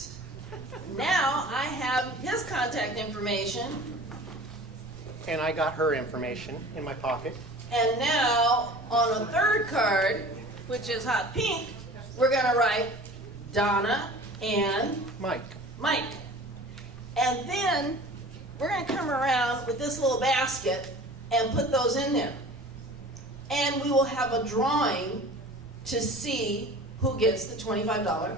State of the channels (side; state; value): right; noise; rumble, 20 dB below the sound